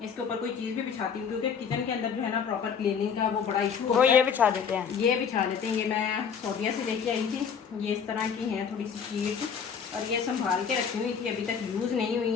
इसके ऊपर कोई चीज़ भी बिछाती हूँ, क्योंकि किचन के अंदर जो है ना प्रॉपर क्लीनिंग का वो बड़ा इशू होता है। ये बिछा देते हैं, ये बिछा देते हैं। ये मैं सऊदीया से लेके आई थी, ये इस तरह की हैं थोड़ी सी शीट, और ये संभाल के रखी हुई थी, अभी तक यूज़ नहीं हुई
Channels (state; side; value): quieter; right; 6.8 dB